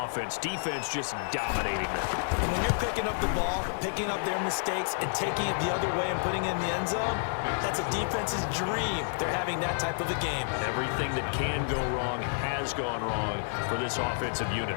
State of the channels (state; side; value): silent; right; 58 dB below the other